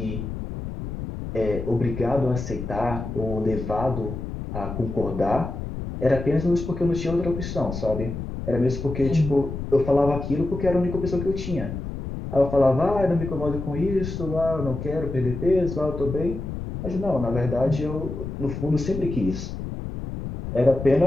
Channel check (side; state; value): left; noise; rumble, 7 dB below the sound